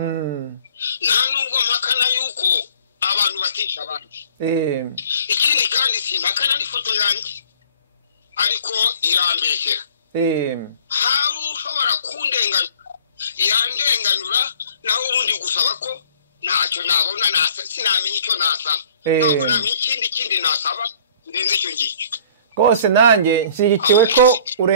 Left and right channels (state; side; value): inverted; both; correlation -0.54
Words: nta nubwo mpakana yuko abantu batica abandi, ikindi kandi simpakana n'ifoto yanjye, ariko irambeshyera. Hari ushobora kundenganura, yandenganura, naho ubundi gusaba ko ntacyo nabona, sinamenya icyo nasaba, ntabwo namenya ikindi nasaba ndenze icyo ngicyo. Rwose nanjye nshyigikiwe ko